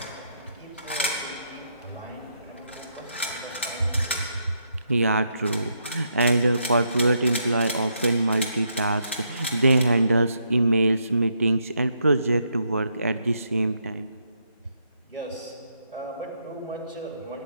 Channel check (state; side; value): inverted; both; correlation -0.77